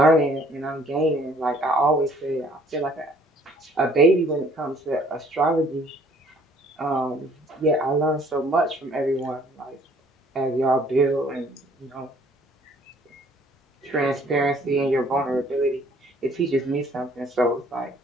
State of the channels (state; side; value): normal; both; correlation 0.59